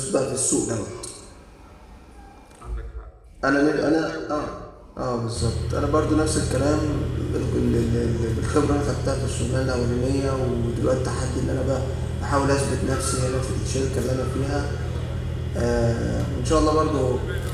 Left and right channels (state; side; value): identical; both; correlation 1.00